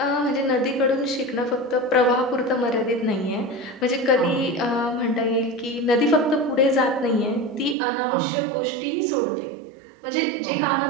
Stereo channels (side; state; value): left; drops out; at 7.8 s